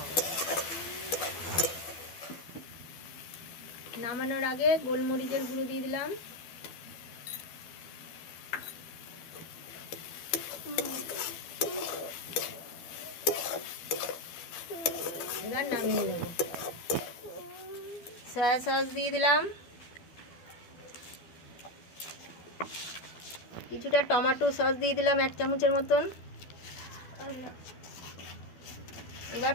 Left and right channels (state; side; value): late; right; 12 ms